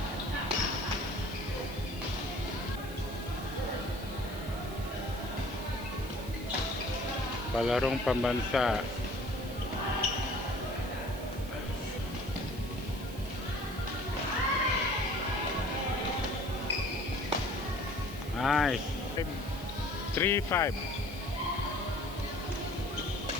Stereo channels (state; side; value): noise; right; hiss, 16 dB below the sound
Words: Palarong pambansa. Nice. 3-5.